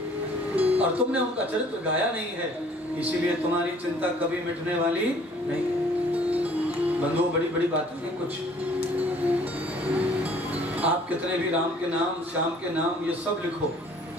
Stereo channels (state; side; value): normal; both; correlation 0.56